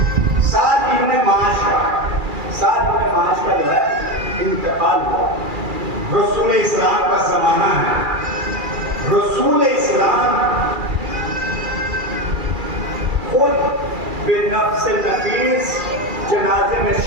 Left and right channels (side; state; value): left; late; 2.4 ms